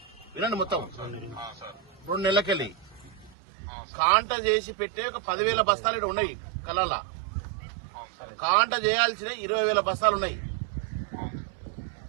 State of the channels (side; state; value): left; drops out; at 3.4 s